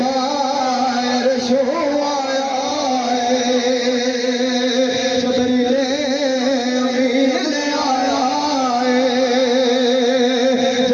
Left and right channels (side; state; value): both; identical; correlation 1.00